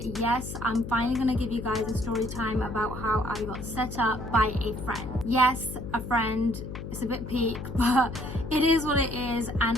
yes, I'm finally gonna give you guys a story time about how I got set up by a friend. Yes, a friend. It's a bit peak, but it is what it is,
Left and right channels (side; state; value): left; noise; hum, 8 dB below the sound